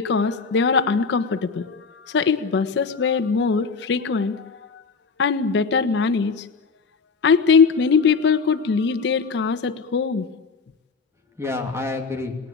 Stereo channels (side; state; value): right; quieter; 4.9 dB